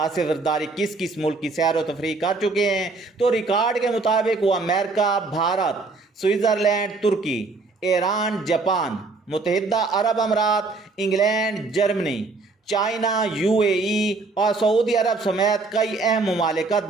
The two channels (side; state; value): left; quieter; 3.7 dB